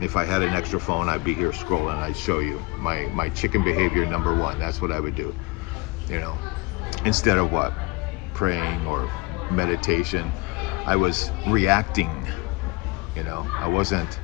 If I had an extra phone, I'd be here scrolling, I'd show you my chicken behavior number one. That's what I would do, you know? Instead of what? Praying or meditation, I was reacting, you know? I wasn't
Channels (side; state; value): right; quieter; 24.4 dB